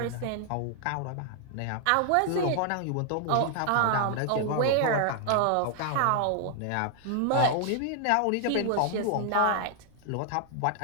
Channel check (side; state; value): both; different; correlation 0.00